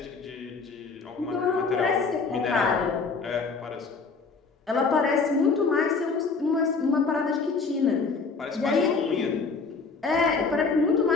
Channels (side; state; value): right; quieter; 4.6 dB